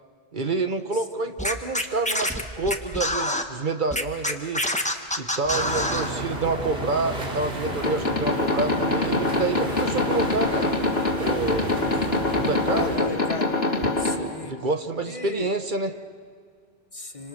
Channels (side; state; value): both; normal; correlation -0.02